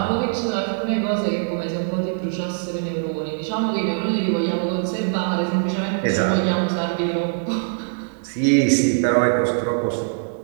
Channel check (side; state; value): left; silent; digital silence